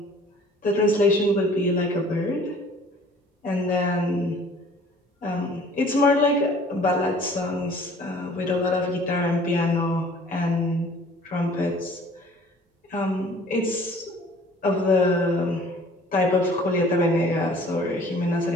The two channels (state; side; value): normal; both; correlation 0.52